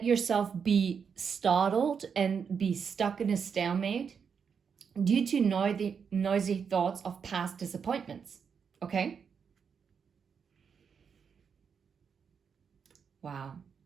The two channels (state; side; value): quieter; left; 6.5 dB